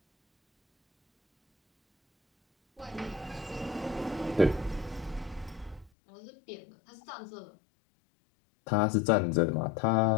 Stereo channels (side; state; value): right; drops out; at 5.9 s